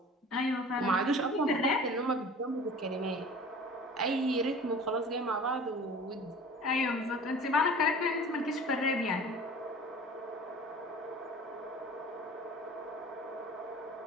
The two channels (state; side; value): normal; both; correlation 0.41